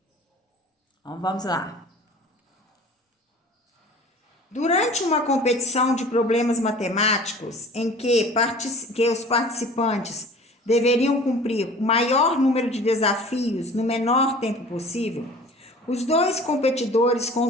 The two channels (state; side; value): normal; both; correlation 0.44